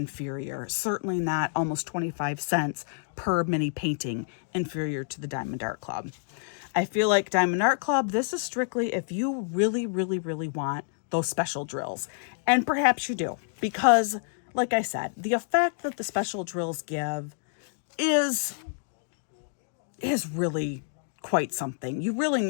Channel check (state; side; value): silent; right; digital silence